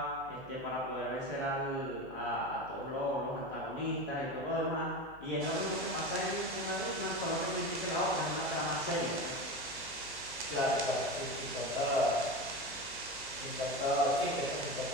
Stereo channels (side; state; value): left; noise; hum, 23 dB below the sound